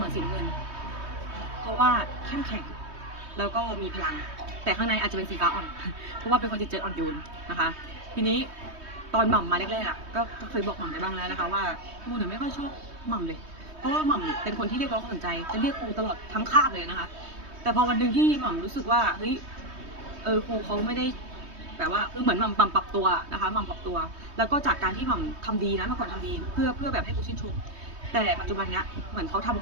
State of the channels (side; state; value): left; late; 3.2 ms